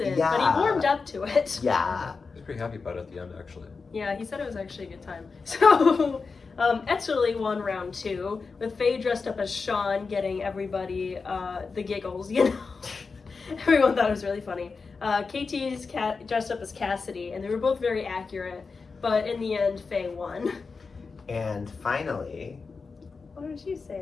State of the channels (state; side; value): quieter; right; 4.6 dB